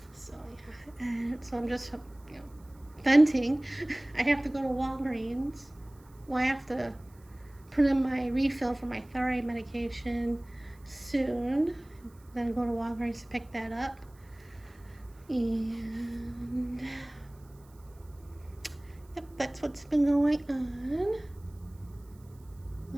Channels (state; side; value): noise; right; hiss, 30 dB below the sound